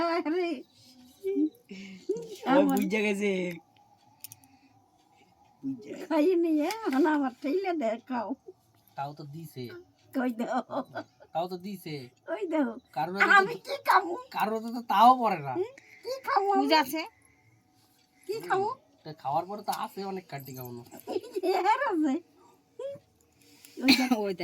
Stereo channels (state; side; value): identical; both; correlation 1.00